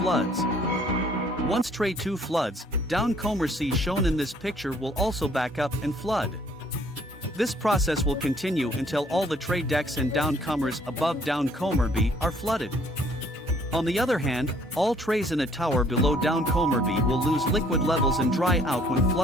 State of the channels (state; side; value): normal; both; correlation 0.60